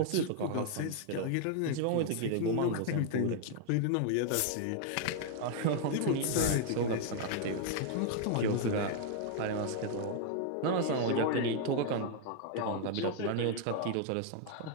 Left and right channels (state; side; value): different; both; correlation 0.00